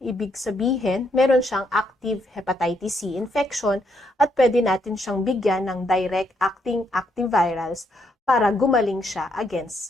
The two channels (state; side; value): normal; both; correlation 0.75